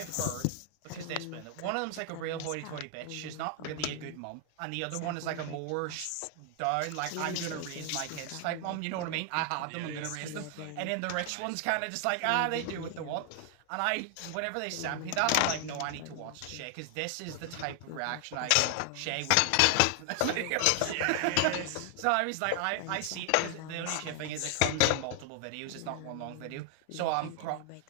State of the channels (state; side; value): different; both; correlation 0.00